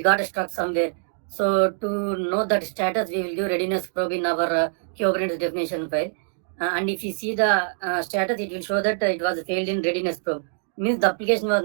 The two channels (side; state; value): left; silent; digital silence